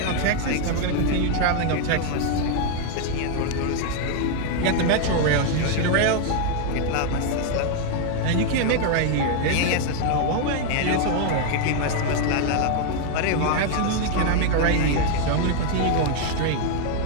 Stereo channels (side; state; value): both; different; correlation 0.01